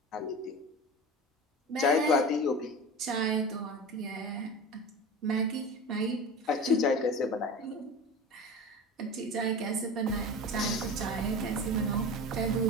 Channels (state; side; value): normal; both; correlation 0.31